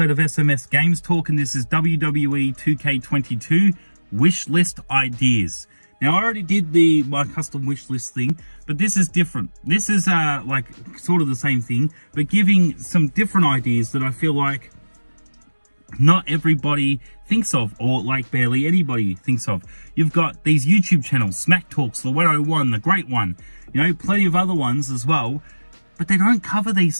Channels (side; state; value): both; inverted; correlation -1.00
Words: of SMS Games Talk, and this is WWE 2K22 wish list ideas. Now, I already did my custom wish list thing, but this is different. This is like sort of the same thing, but giving some different ideas that I feel like not everybody thinks of, or like barely anybody thinks of. You've got these YouTube channels, Smack Talks, the 101, the Great One, you know, plenty of other ones as well, but they don't cover these